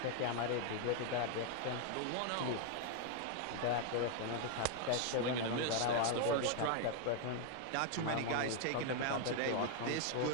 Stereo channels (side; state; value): both; different; correlation 0.00